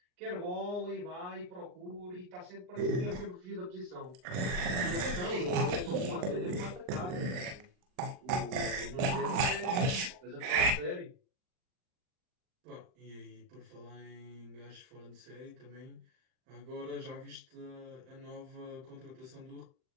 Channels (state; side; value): late; left; 39 ms